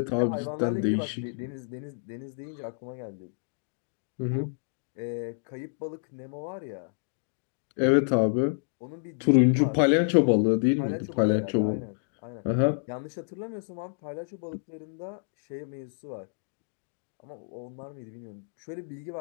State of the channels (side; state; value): right; silent; digital silence